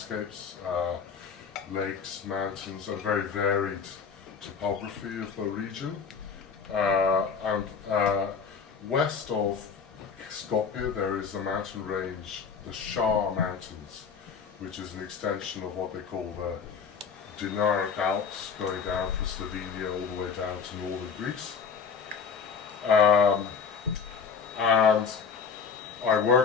lakes, mountains, and very varied topography of the region. West of Skopje there is a mountain range, the Shar Mountains, which is an extension of what they call the Dinaric Alps, going down from Slovenia all the way down to northern Greece. And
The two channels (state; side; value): quieter; right; 6.0 dB